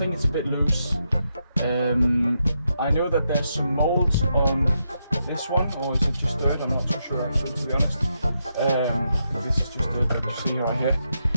it's a bit loose. I know that there's some molds on this one, or is it just dirt? I'm not too sure actually, to be honest. This is just dirt that you see right here.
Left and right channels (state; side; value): inverted; both; correlation -0.83